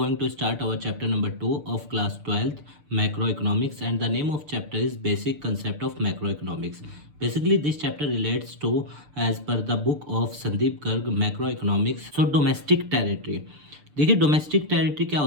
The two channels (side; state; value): left; late; 6.8 ms